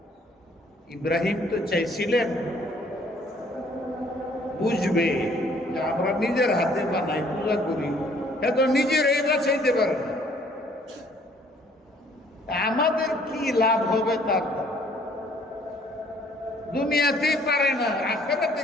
ইব্রাহিম তো চাইছিলেন বুঝবে যে আমরা নিজের হাতে বানাই, পূজা করি, এত নিজের এই বাঁচাইতে পারে না, আমাদের কি লাভ হবে তার? দুনিয়াতেই পারে না, আখিরাতে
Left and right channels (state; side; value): normal; both; correlation 0.60